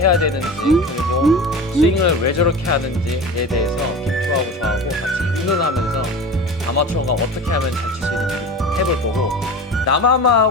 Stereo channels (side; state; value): both; normal; correlation 0.32